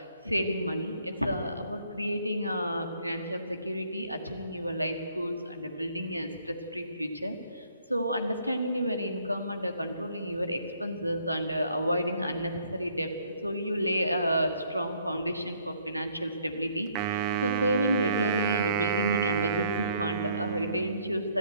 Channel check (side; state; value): both; inverted; correlation -0.64